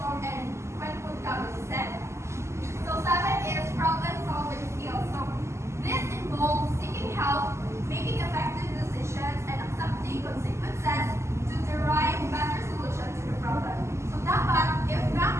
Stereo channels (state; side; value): late; left; 0.13 ms